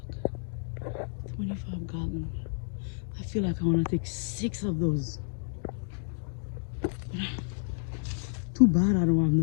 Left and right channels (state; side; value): silent; right; digital silence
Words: Look, 25 gallons. I feel like I want to take 6 of those. Too bad I don't have